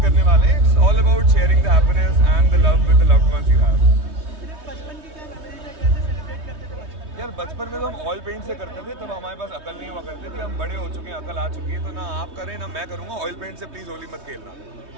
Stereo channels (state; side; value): late; left; 3.2 ms